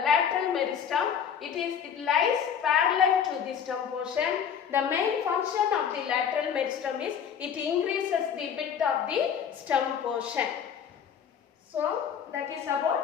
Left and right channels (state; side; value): quieter; right; 7.8 dB